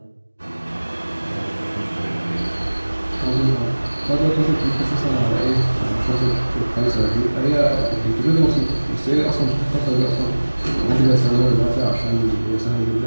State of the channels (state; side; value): inverted; both; correlation -1.00